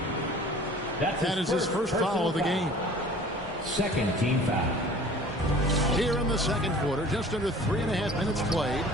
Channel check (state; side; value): normal; both; correlation 0.46